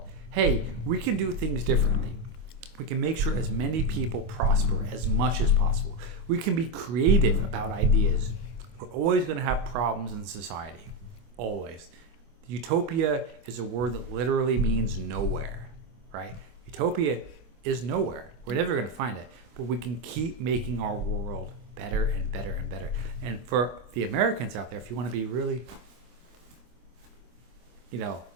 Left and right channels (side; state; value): left; late; 25 ms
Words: Hey, we can do things differently. We can make sure as many people prosper as much as possible. We can be creative about ideas. We're always going to have problems in society. Always. Utopia is a word that literally means nowhere, right? Utopia is nowhere. We're never going to find it. But we can keep making our world better and better and better. And for the Americans out there, if you want to be really, I'm